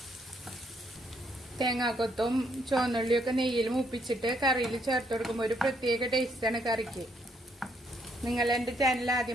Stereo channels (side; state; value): both; normal; correlation 0.72